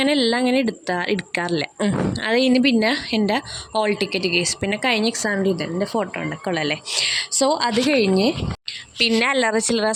എല്ലാം അങ്ങനെ എടുക്കാറില്ല. അത് കഴിഞ്ഞ് പിന്നെ എൻ്റെ ഹോൾ ടിക്കറ്റ് കേസ്, പിന്നെ കഴിഞ്ഞ എക്സാമിൻ്റെ എൻ്റെ ഫോട്ടോ ഉണ്ടൊക്കെ ഉള്ളല്ലേ. സോ അത് കഴിഞ്ഞ് പിന്നെ അല്ലറ ചില്ലറ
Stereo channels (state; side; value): identical; both; correlation 1.00